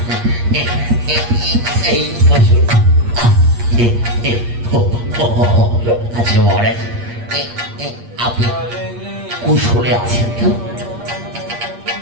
এই বসুন। আচ্ছা মহারাজ, আপনি কুশলে আছেন তো?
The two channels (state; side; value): late; left; 8.5 ms